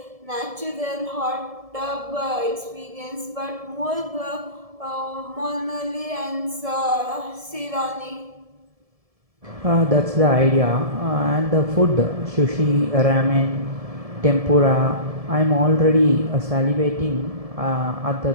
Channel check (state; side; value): late; left; 1.7 ms